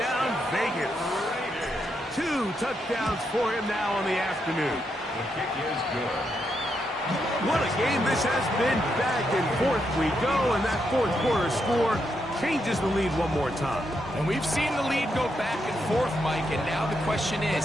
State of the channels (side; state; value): both; normal; correlation 0.81